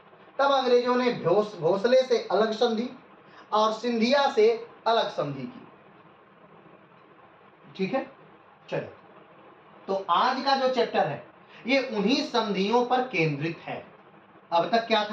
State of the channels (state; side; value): identical; both; correlation 1.00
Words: तब अंग्रेजों ने भोसले से अलग संधि और सिंधिया से अलग संधि की। ठीक है, चलिए। तो आज का जो चैप्टर है ये उन्हीं संधियों पर केंद्रित है। अब तक क्या